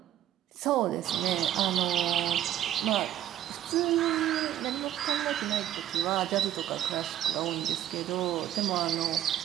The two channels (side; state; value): left; quieter; 11.9 dB